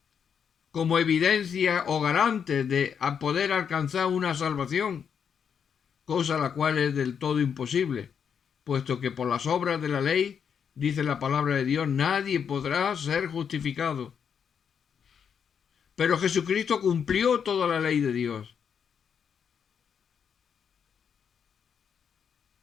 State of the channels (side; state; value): right; quieter; 7.3 dB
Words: como evidencia o garante de poder alcanzar una salvación, cosa la cual es del todo imposible, puesto que por las obras de la ley, dice la palabra de Dios, nadie podrá ser justificado. Pero Jesucristo cumplió toda la ley de Dios.